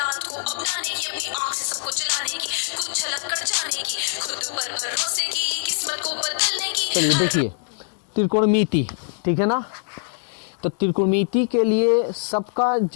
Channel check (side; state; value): right; silent; digital silence